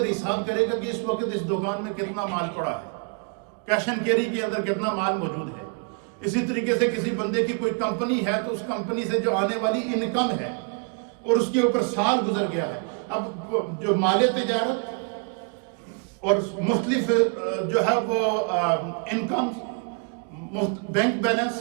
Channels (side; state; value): left; quieter; 38.1 dB